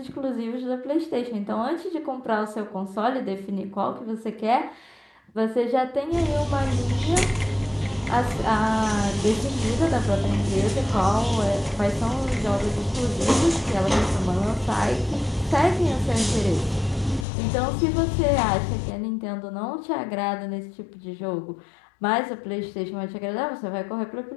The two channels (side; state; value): right; drops out; at 17.2 s